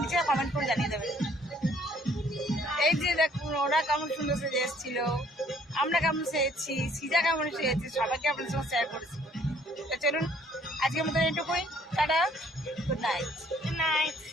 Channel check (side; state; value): both; normal; correlation 0.61